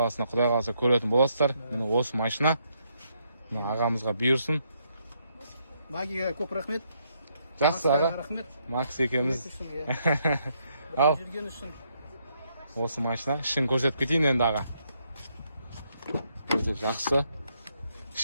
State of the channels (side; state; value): both; inverted; correlation -0.75